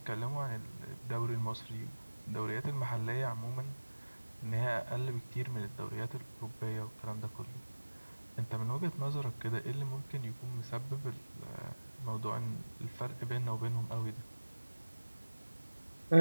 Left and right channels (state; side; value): inverted; both; correlation -1.00